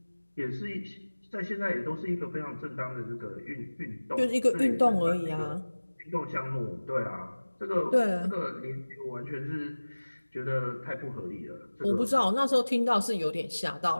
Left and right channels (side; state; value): both; inverted; correlation -1.00